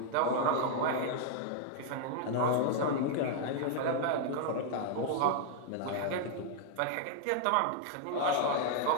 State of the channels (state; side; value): different; both; correlation 0.00